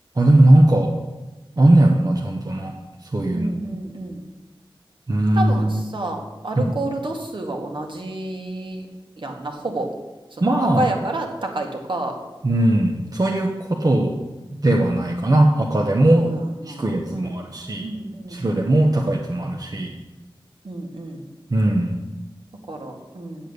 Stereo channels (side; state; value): both; normal; correlation 0.93